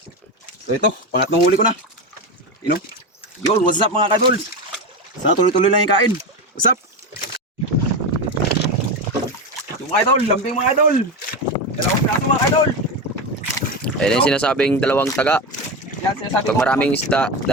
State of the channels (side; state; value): both; normal; correlation 0.17